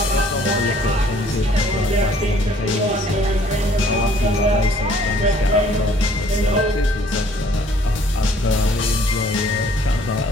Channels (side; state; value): both; normal; correlation 0.59